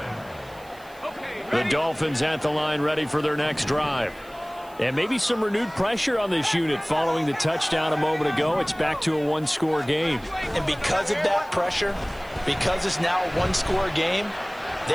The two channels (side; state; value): right; noise; hiss, 25 dB below the sound